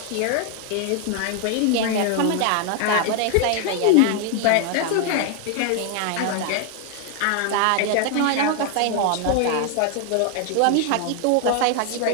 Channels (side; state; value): both; different; correlation 0.00